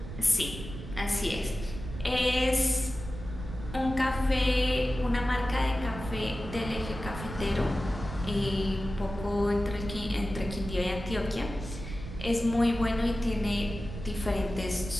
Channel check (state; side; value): noise; right; rumble, 9 dB below the sound